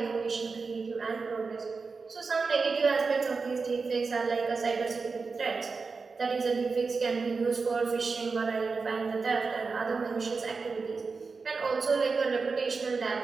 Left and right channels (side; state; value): left; quieter; 4.5 dB